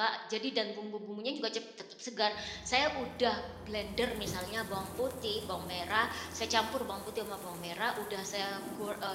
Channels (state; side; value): identical; both; correlation 1.00